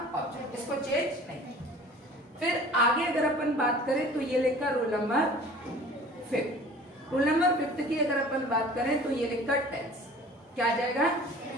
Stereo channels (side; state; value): both; normal; correlation 0.45